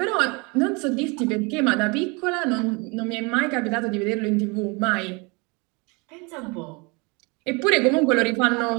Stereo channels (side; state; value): left; quieter; 29.1 dB